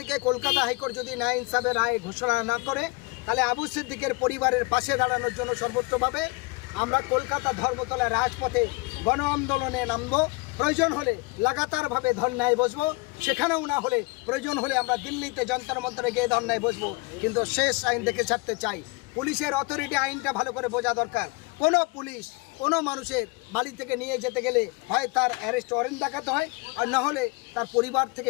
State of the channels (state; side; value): quieter; right; 26.3 dB